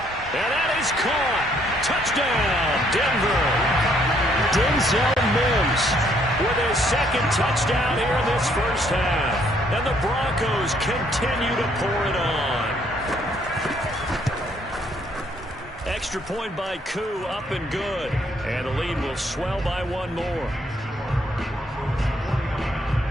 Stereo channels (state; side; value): normal; both; correlation 0.67